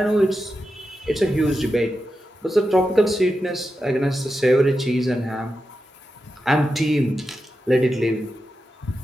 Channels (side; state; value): both; normal; correlation 0.90